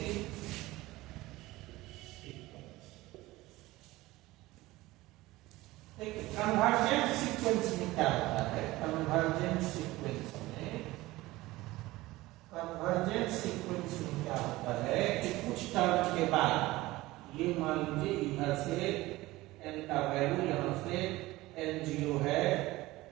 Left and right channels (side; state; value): left; quieter; 18.8 dB